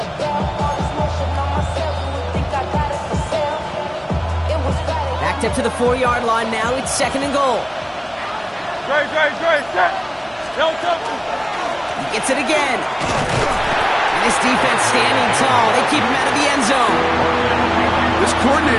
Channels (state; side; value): identical; both; correlation 1.00